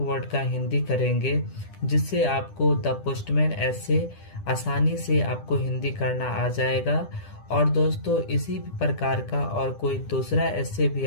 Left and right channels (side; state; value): right; late; 10 ms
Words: का हिंदी करेंगे, जिससे आपको द पोस्टमैन ऐसे आसानी से आपको हिंदी करना आ जाएगा। और दोस्तों इसी प्रकार का और कोई दूसरा ऐसे भी